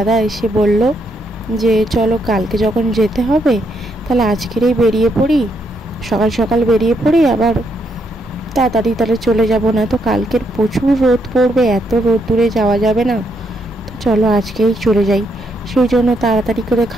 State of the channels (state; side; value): normal; both; correlation 0.76